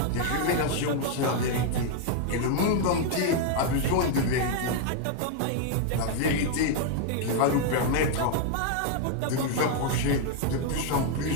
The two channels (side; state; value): both; different; correlation 0.00